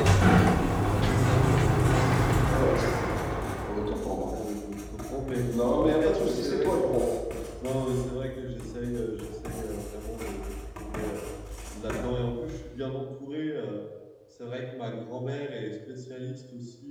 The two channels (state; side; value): identical; both; correlation 1.00